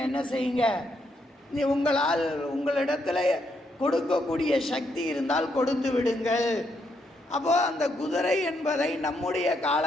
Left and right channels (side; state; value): both; normal; correlation 0.77